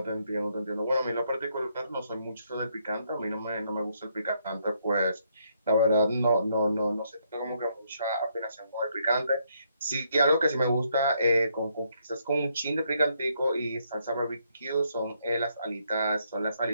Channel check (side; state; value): both; inverted; correlation -0.74